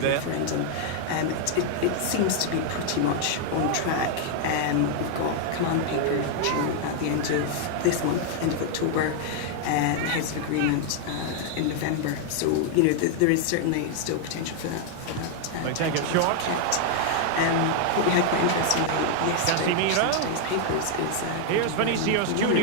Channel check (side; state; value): both; different; correlation 0.00